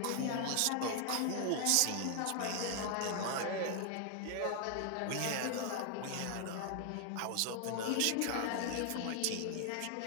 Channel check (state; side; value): different; both; correlation 0.00